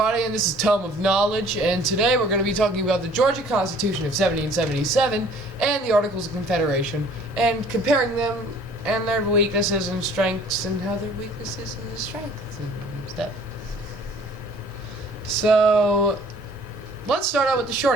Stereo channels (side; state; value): both; normal; correlation 0.53